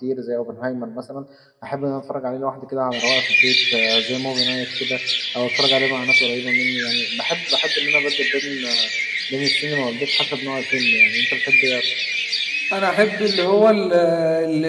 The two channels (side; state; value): both; identical; correlation 1.00